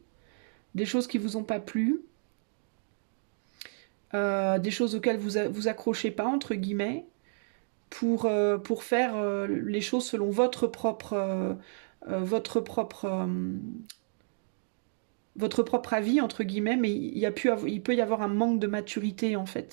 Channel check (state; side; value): silent; left; digital silence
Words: des choses qui vous ont pas plu, des choses auxquelles vous accrochez pas, entre guillemets, pour faire les choses selon votre propre avis, entre guillemets, mais il peut y avoir un manque de maturité, en